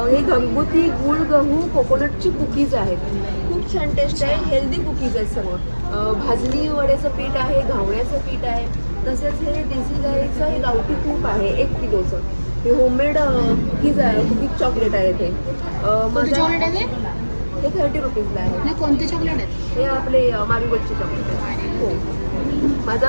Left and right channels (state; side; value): inverted; both; correlation -1.00